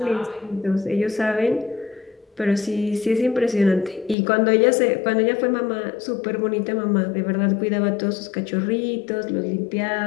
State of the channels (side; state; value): right; drops out; at 4.2 s